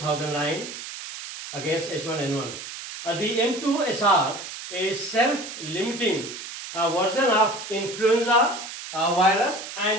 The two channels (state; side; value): noise; right; hiss, 10 dB below the sound